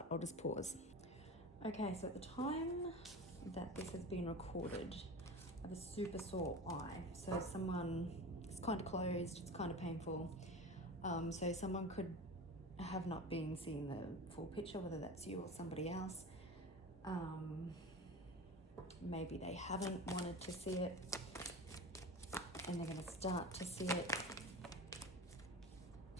I'll just pause. Okay, so at the time that this has been recorded, I have a super sore eye. So it's kind of closed, it's kind of painful. So someone could have not been seeing the full picture, whether that's you or somebody else. Maybe they haven't wanted to see it and they're going to start to see it.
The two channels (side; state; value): both; normal; correlation 0.31